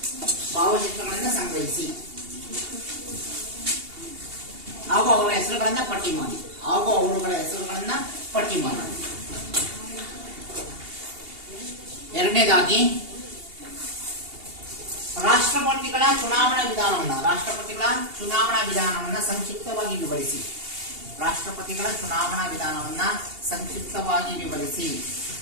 ಭಾವಚಿತ್ರಗಳನ್ನು ಸಂಗ್ರಹಿಸಿ ಹಾಗೂ ಅವರ ಹೆಸರುಗಳನ್ನ ಪಟ್ಟಿ ಮಾಡಿ. ಎರಡನೇದಾಗಿ ರಾಷ್ಟ್ರಪತಿಗಳ ಚುನಾವಣಾ ವಿಧಾನವನ್ನ ಸಂಕ್ಷಿಪ್ತವಾಗಿ ವಿವರಿಸಿ. ರಾಷ್ಟ್ರಪತಿಗಳ ಚುನಾವಣಾ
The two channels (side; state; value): left; late; 2.8 ms